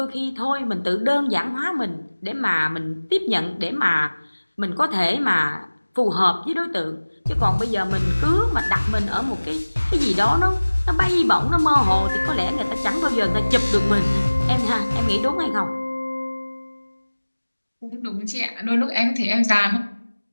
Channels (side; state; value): both; inverted; correlation -1.00